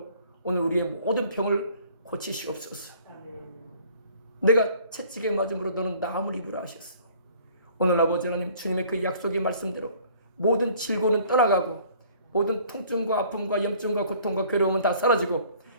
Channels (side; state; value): both; inverted; correlation -0.54